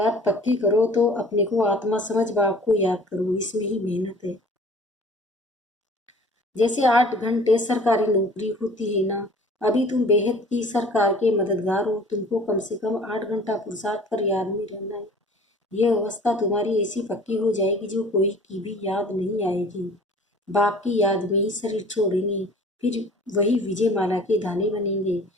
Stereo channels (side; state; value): both; normal; correlation 0.48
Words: पक्की करो, तो अपने को आत्मा समझ बाप को याद करो, इसमें ही मेहनत है। जैसे 8 घंटे सरकारी नौकरी होती है ना, अभी तुम बेहद की सरकार के मददगार हो, तुमको कम से कम 8 घंटा पुरुषार्थ कर याद में रहना है। यह अवस्था तुम्हारी ऐसी पक्की हो जाएगी जो कोई की भी याद नहीं आएगी। बाप की याद में ही शरीर छोड़ेंगे, फिर वही विजय माला के दाने बनेंगे।